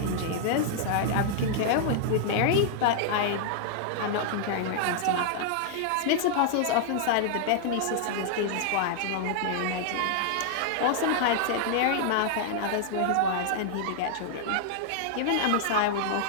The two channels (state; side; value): different; both; correlation -0.01